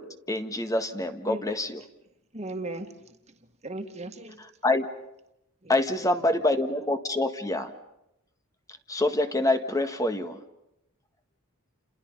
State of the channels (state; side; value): normal; both; correlation 0.61